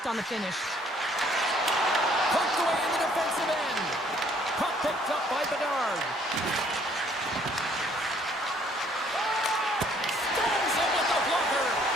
on the finish. Poked away in the defensive end. Puck picked up by Bedard. Stones him with the blocker.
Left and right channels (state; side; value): normal; both; correlation 0.62